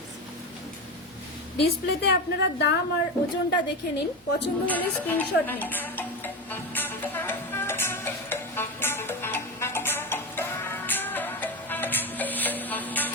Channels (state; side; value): normal; both; correlation 0.18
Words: ডিসপ্লেতে আপনারা দাম আর ওজনটা দেখে নিন, পছন্দ হলে স্ক্রিনশট নিন।